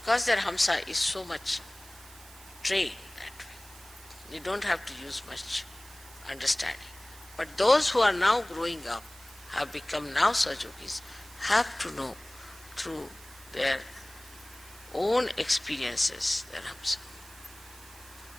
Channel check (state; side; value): noise; right; hiss, 20 dB below the sound